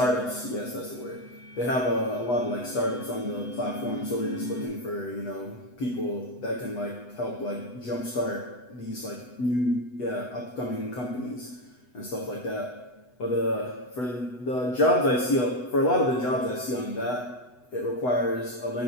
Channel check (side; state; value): right; late; 8.0 ms